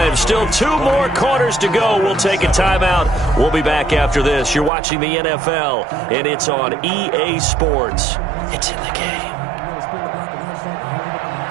Still 2 more quarters to go. We'll take a timeout. We'll be back after this. You're watching the NFL, and it's on EA Sports. It's in the game.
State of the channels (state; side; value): drops out; left; at 4.7 s